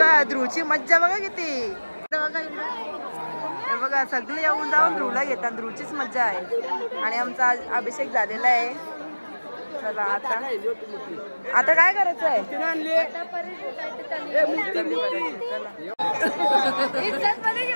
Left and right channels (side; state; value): both; inverted; correlation -1.00